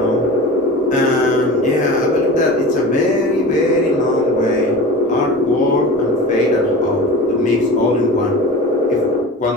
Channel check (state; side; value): normal; both; correlation 0.33